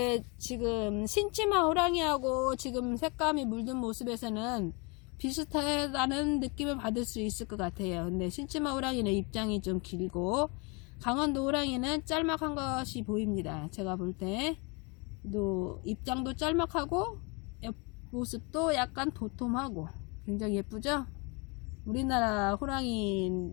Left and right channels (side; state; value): right; quieter; 30.4 dB